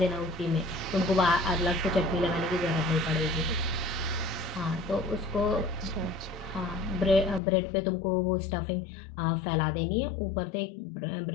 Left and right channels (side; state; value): right; drops out; at 7.4 s